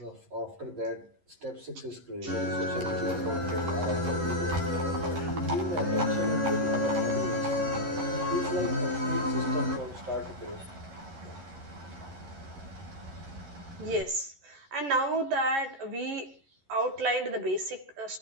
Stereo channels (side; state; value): left; late; 11 ms